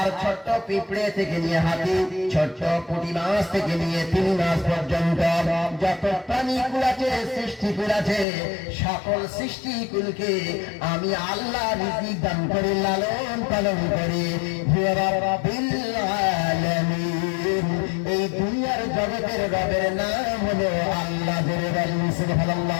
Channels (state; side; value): drops out; right; at 8.2 s